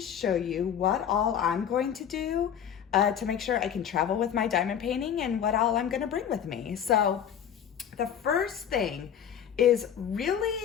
show you what all I'm going to do to make sure I can travel with my diamond painting and what all I'm gonna bring with me. So the first thing is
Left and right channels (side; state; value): right; quieter; 8.8 dB